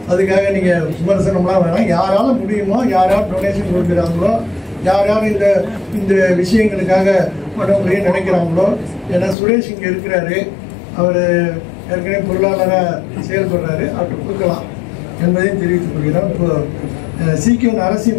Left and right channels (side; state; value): right; drops out; at 9.3 s